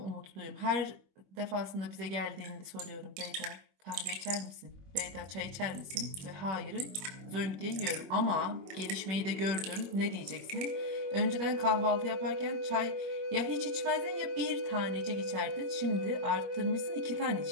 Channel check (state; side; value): late; left; 21 ms